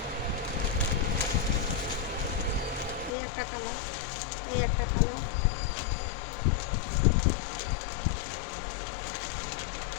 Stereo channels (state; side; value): drops out; right; at 3.1 s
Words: এই একটা কালার, এই একটা কালার,